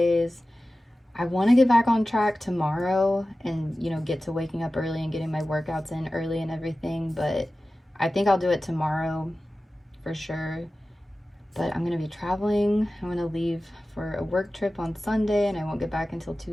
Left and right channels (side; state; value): both; normal; correlation 0.95